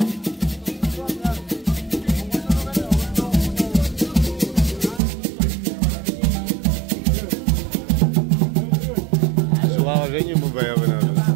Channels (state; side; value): drops out; left; at 5.0 s